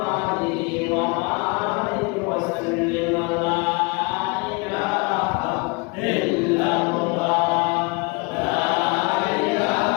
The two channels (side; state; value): right; quieter; 28.9 dB